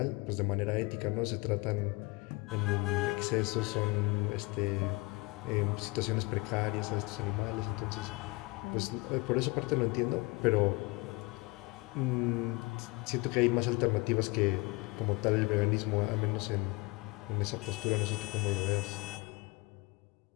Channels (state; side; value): quieter; right; 25.6 dB